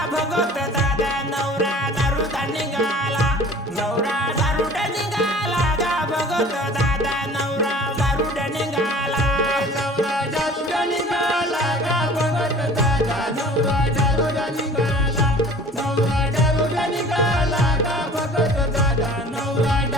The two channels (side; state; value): both; normal; correlation 0.46